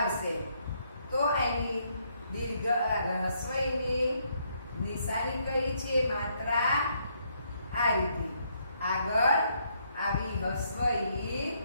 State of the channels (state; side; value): inverted; both; correlation -0.73